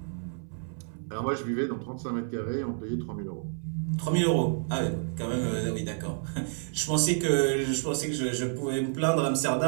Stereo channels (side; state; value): left; silent; 58 dB below the other